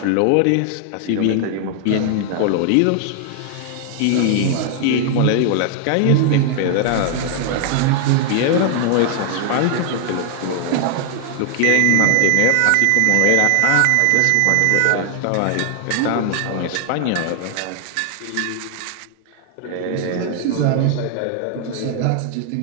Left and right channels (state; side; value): different; both; correlation 0.00